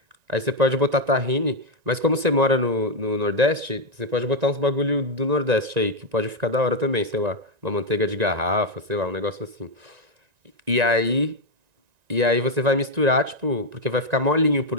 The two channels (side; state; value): left; late; 1.9 ms